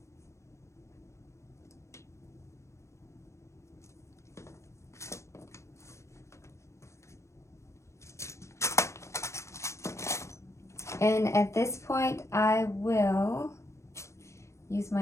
And at this point, I will use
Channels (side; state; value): right; late; 0.14 ms